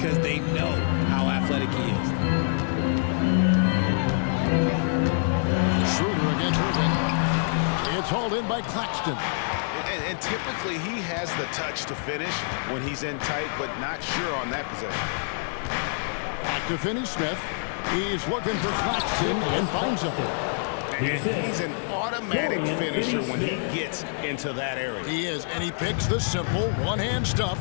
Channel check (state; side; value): silent; right; 61 dB below the other